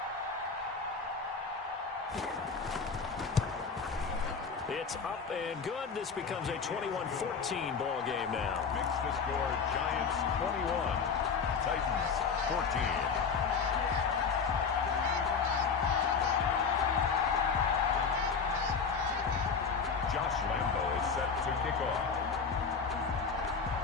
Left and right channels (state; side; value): quieter; right; 5.6 dB